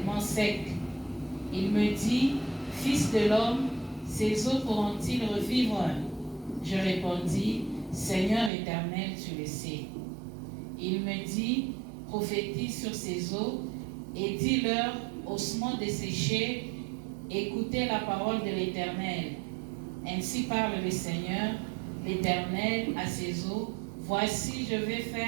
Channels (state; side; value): drops out; left; at 8.5 s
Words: secs. Il me dit, Fils de l'homme, ces eaux pourront-ils revivre? Je répondis, Seigneur éternel, tu le sais. Il me dit, prophétise sur ces eaux et dis-leur, ossements desséchés, écoutez la parole de l'Éternel. Ainsi parle le Seigneur, l'Éternel, à ces eaux. Voici, je vais